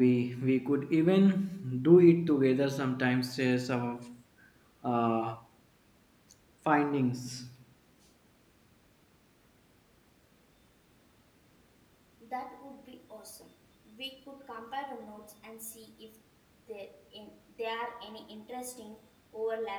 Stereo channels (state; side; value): identical; both; correlation 1.00